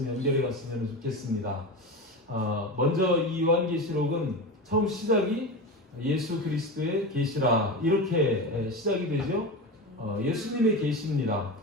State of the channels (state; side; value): normal; both; correlation 0.24